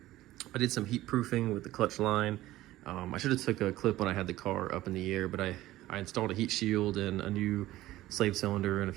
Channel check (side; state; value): left; quieter; 16.0 dB